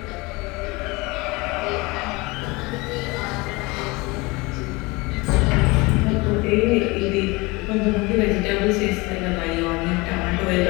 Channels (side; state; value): right; quieter; 24.3 dB